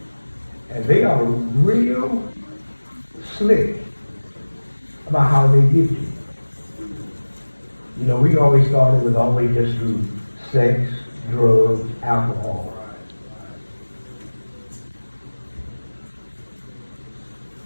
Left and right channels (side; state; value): both; inverted; correlation -1.00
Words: And they are real slick about how they get you. You know, we always thought it was always just through sex, drugs, alcohol.